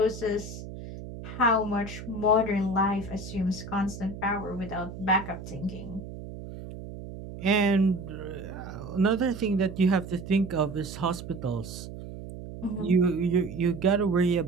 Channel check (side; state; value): right; noise; hum, 11 dB below the sound